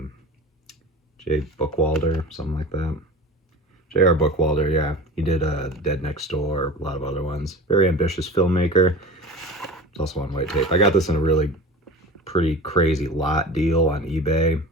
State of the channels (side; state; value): both; normal; correlation 0.36